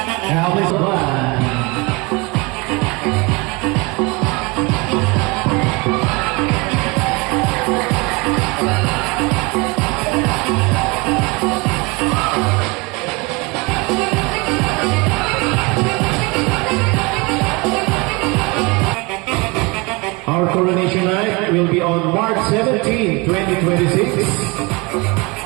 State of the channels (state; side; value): quieter; left; 26.8 dB